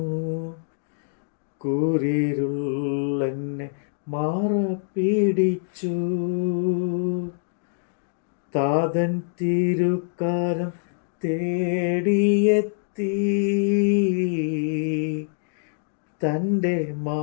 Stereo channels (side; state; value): right; silent; digital silence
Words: കൂരിരുളെന്നെ മാറപ്പിടിച്ചു. താതൻ തിരുക്കാരം തേടിയെത്തി, തൻ്റെ